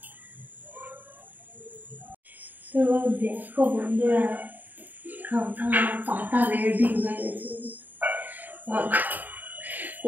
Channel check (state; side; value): late; left; 0.086 ms